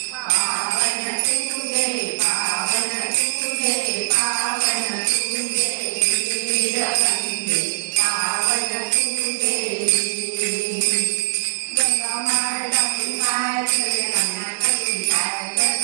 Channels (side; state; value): left; silent; digital silence